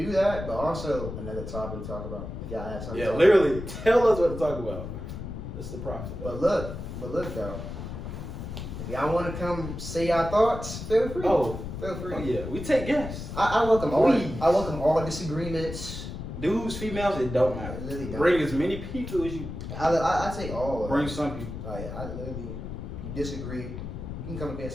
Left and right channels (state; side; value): noise; left; rumble, 8 dB below the sound